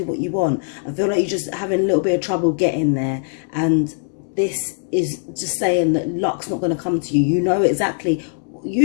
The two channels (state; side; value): silent; right; digital silence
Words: what you want. I feel like you're just having a little bit of trouble getting there, and this is just saying that luck's not going to come to you. You know exactly.